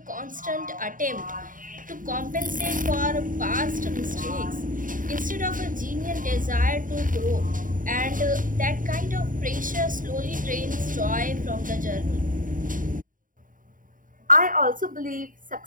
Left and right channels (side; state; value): left; late; 0.39 ms